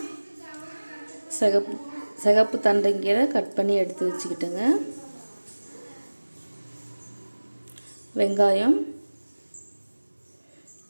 சிகப்பு தண்டைங்கீரை கட் பண்ணி எடுத்து வச்சுக்கிட்டுங்க. வெங்காயம்,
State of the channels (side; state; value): both; inverted; correlation -1.00